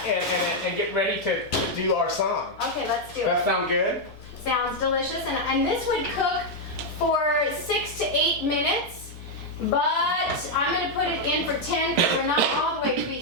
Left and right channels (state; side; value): normal; both; correlation 0.00